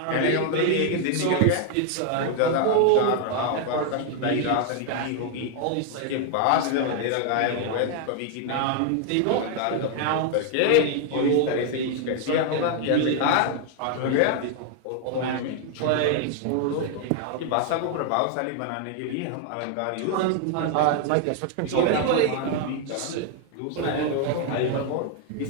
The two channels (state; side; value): different; both; correlation 0.00